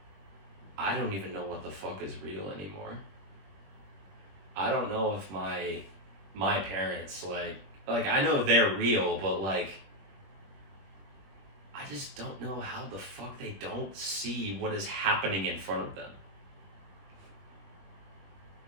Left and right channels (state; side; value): late; left; 21 ms